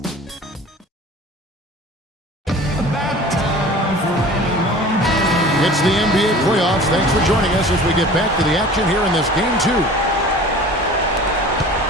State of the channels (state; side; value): normal; both; correlation 0.42